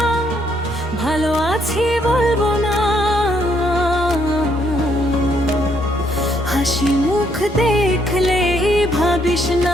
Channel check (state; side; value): normal; both; correlation 0.71